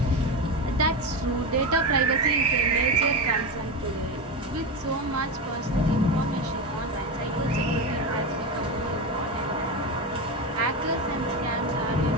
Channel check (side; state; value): both; normal; correlation 0.17